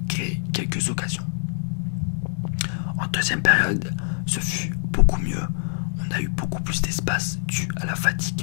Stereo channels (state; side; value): silent; right; digital silence